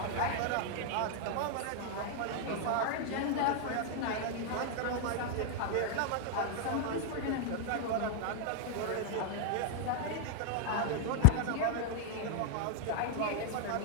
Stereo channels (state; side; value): different; both; correlation 0.00